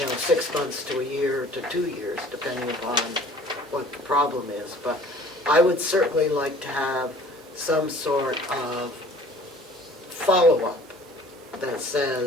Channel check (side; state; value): both; normal; correlation 0.49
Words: 6 months to a year to 2 years, depending upon what the problem is. But I would certainly like to have some sort of follow-up that